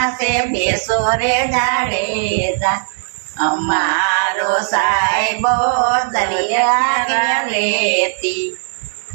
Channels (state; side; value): silent; left; 66 dB below the other